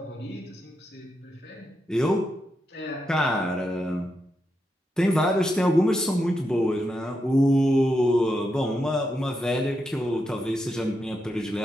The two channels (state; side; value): normal; both; correlation 0.85